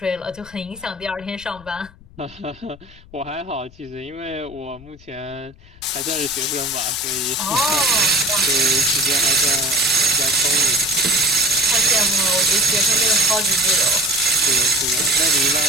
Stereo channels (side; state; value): left; noise; rumble, 23 dB below the sound